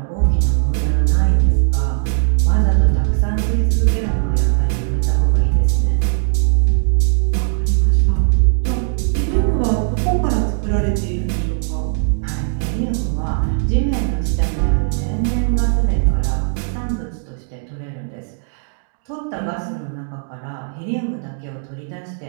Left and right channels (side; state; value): left; silent; digital silence